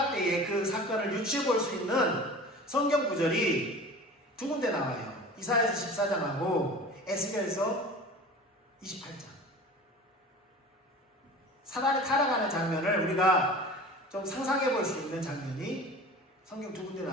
때에 그 사건을 유추해 볼 수 있는 성경 구절이 두 군데 나와요. 이사야서 14장하고 에스겔서 28장. 사단이 타락하는 장면을 우리가 좀 상상해 볼 수 있는 장면이 성경 두 군데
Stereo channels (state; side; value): normal; both; correlation 0.38